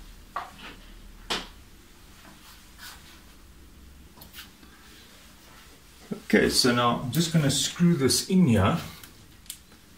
Okay, so now I'm just going to screw this in here.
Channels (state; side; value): identical; both; correlation 1.00